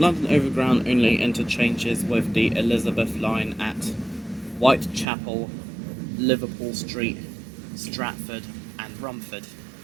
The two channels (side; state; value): left; drops out; at 5.1 s